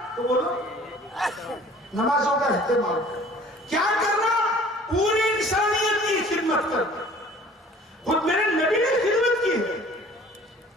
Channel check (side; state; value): both; normal; correlation 0.50